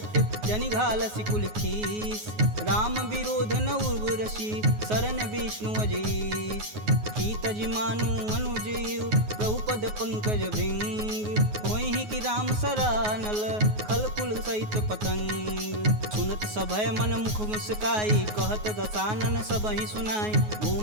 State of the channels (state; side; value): late; left; 9.4 ms